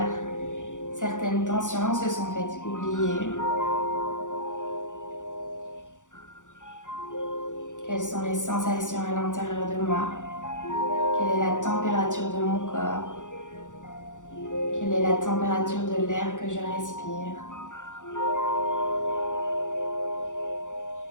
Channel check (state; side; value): late; right; 0.86 ms